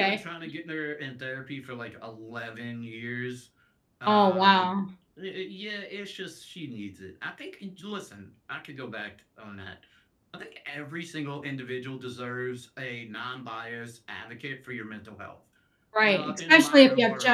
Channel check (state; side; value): identical; both; correlation 1.00